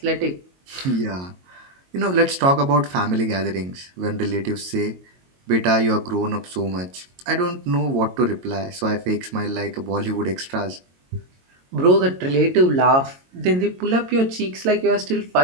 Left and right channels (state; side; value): late; left; 22 ms